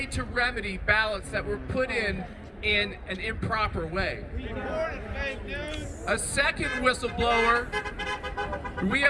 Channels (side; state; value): both; identical; correlation 1.00